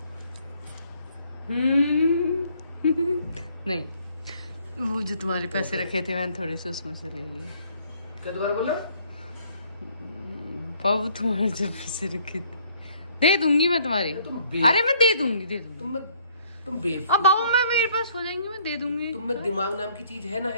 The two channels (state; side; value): inverted; both; correlation -0.63